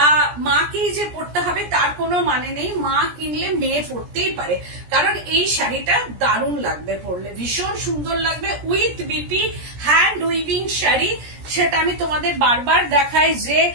মাকেই যে পরতে হবে তার কোনো মানে নেই, মা কিনলে মেয়ে পরতেই পারে, কারণ এই শাড়িটা দারুণ লাগবে পরলে, ভীষণ সুন্দর লাগবে। With BP hand weaving sari, সেটা আমি তোমাদের বারবার দেখাই যে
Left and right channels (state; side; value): late; left; 17 ms